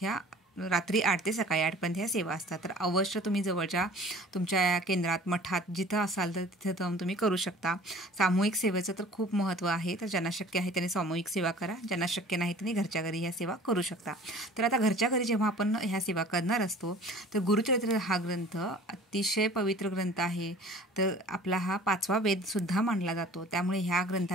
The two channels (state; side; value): normal; both; correlation 0.46